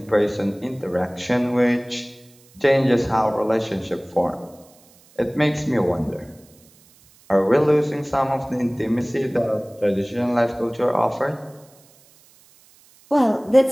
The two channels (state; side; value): noise; right; hiss, 29 dB below the sound